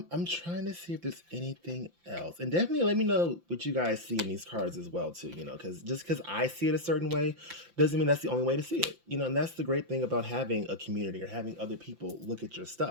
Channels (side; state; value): left; late; 5.8 ms